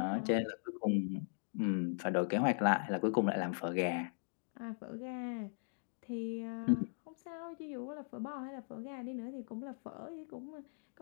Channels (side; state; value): right; silent; digital silence